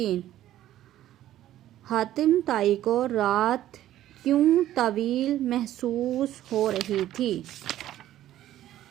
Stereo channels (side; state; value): left; quieter; 13.1 dB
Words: हातिम ताई को रात क्यों तवील महसूस हो रही थी।